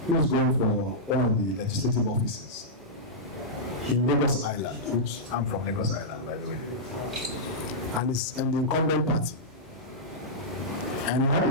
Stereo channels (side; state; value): both; normal; correlation -0.11